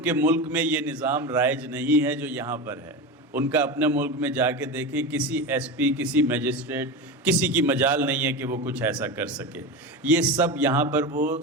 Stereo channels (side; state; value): both; normal; correlation 0.22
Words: ملک میں یہ نظام رائج نہیں ہے جو یہاں پر ہے، ان کا اپنے ملک میں جا کے دیکھیں، کسی ایس پی، کسی میجسٹریٹ، کسی کی مجال نہیں ہے کہ وہ کچھ ایسا کر سکے۔ یہ سب یہاں پر وہ